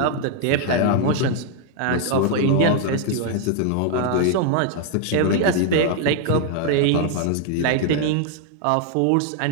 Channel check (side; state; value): both; different; correlation 0.00